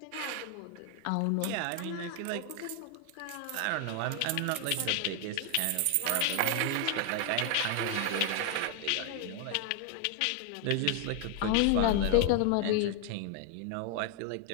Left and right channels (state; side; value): different; both; correlation 0.00